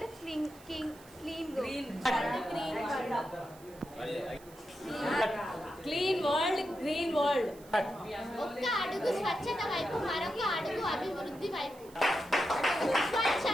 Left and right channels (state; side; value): noise; right; hiss, 23 dB below the sound